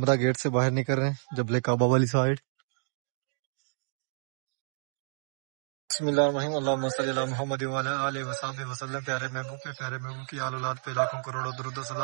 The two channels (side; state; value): left; silent; digital silence